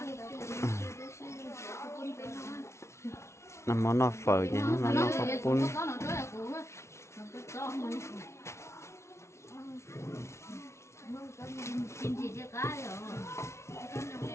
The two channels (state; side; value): late; right; 0.13 ms